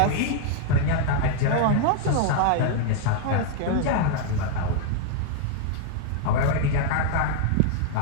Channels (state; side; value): different; both; correlation 0.00